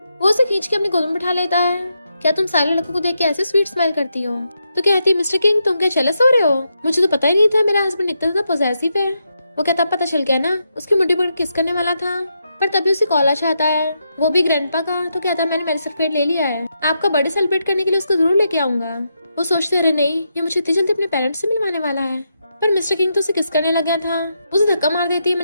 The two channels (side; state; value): both; inverted; correlation -0.83